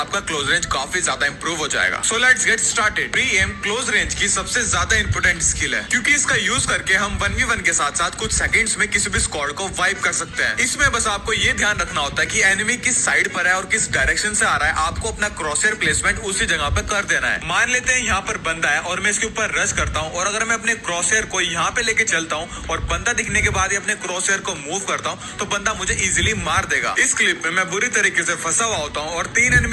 क्लोज रेंज काफी ज्यादा इंप्रूव हो जाएगा। So let's get started. Pre M close range की सबसे ज्यादा इंपोर्टेंट स्किल है, क्योंकि इसका यूज करके हम 1v1 के साथ साथ कुछ सेकंड्स में किसी भी स्क्वाड को वाइप कर सकते हैं। इसमें बस आपको ये ध्यान रखना होता है कि एनिमी किस साइड पर है और किस डायरेक्शन से आ रहा है, आपको अपना क्रॉसहेयर प्लेसमेंट उसी जगह पे कर देना है। मान लेते हैं यहाँ पर बंदा है और मैं इसके ऊपर रश करता हूँ, और अगर मैं अपने क्रॉसहेयर को यहाँ पे लेके चलता हूँ और बंदा दिखने के बाद ही अपने क्रॉसहेयर को मूव करता हूँ, तो बंदा मुझे इजीली मार देगा। इस क्लिप में मैं बुरी तरीके से फंसा हुआ होता हूँ और 3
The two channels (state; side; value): identical; both; correlation 1.00